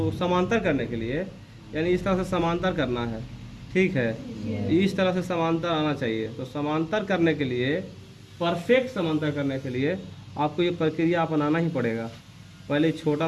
समांतर करने के लिए, यानी इस तरह से समांतर करना है। ठीक है, इस तरह से समांतर आना चाहिए। तो समांतर करने के लिए, परफेक्ट समांतर करने के लिए आपको ये प्रक्रिया अपनाना ही पड़ेगा। पहले छोटा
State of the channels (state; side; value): identical; both; correlation 1.00